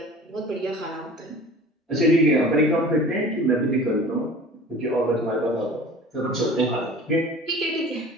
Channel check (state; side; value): normal; both; correlation 0.42